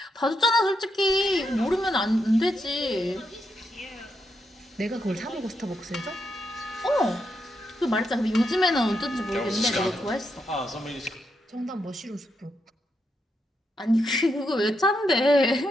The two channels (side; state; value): both; normal; correlation 0.82